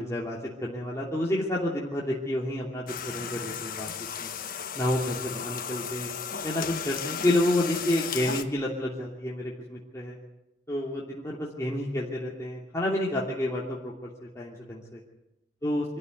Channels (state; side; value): normal; both; correlation 0.67